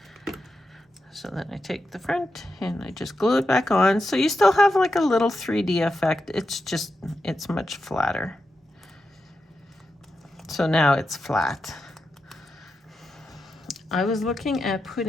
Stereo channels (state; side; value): normal; both; correlation 0.88